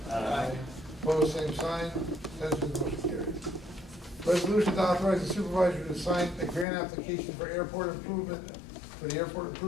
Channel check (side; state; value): right; drops out; at 6.7 s